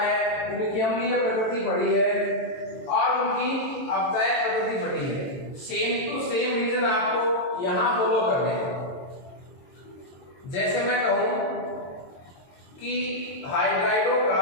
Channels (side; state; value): right; late; 22 ms